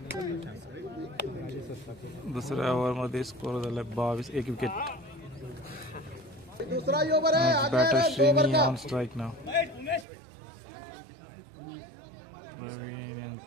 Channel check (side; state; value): left; drops out; at 10.1 s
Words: दुसऱ्या ओव्हर मध्ये स्कोर झाला 22. 1 wicket. Batter Srini on strike नाव. प्रवीण